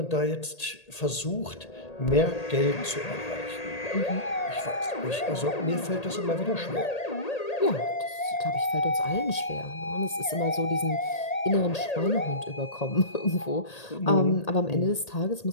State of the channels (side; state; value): right; late; 1.8 ms